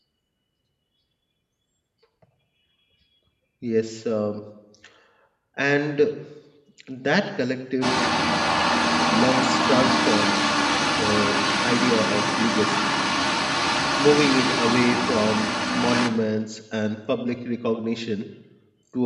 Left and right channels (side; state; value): both; identical; correlation 1.00